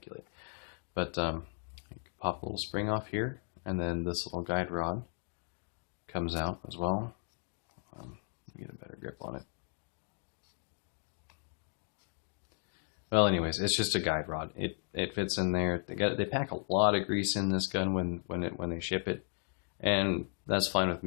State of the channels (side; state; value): right; silent; 54 dB below the other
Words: But you can pop a little spring off here, and then this little guide rod comes out as well. Let me get a better grip on it. Well, anyways, it's just a guide rod. It fits in there. They pack a lot of grease in this gun when they ship it, and that's fine with